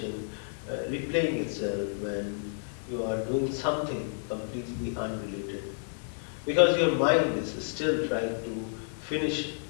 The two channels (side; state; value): right; silent; 58 dB below the other